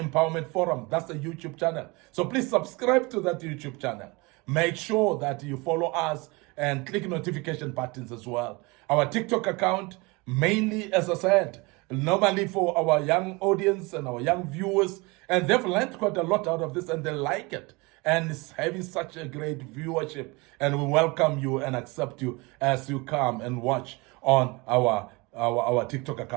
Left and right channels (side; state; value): left; quieter; 25.9 dB